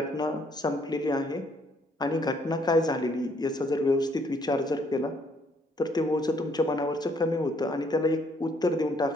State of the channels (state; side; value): normal; both; correlation 0.67